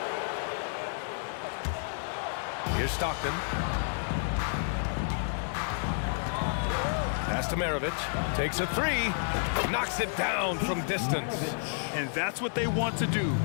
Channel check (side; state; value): right; silent; 57 dB below the other